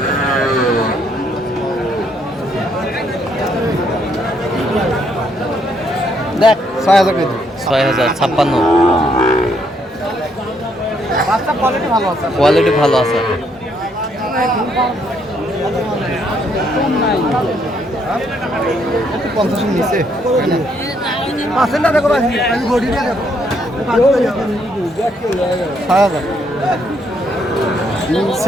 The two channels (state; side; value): normal; both; correlation 0.72